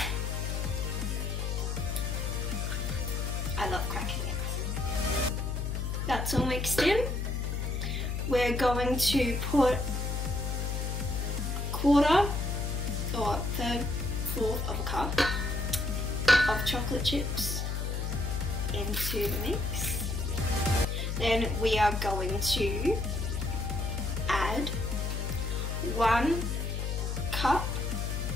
I love cracking eggs. That's all mixed in. We're going to put 1/4 or 1/4 of a cup of chocolate chips into the mix. Then we are going to add 1 cup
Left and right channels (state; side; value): noise; left; hum, 1 dB below the sound